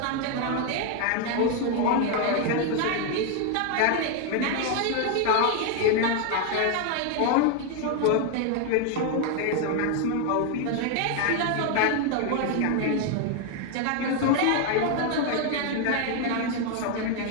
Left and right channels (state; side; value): different; both; correlation 0.01